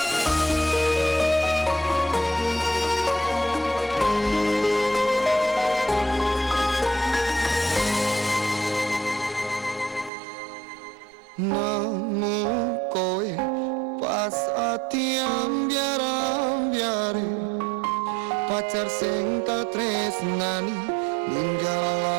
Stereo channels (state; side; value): drops out; left; at 10.1 s